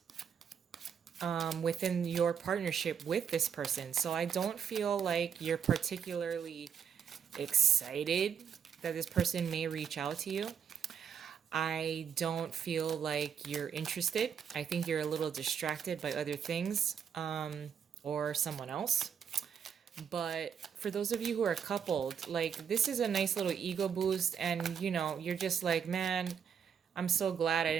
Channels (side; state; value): left; quieter; 7.6 dB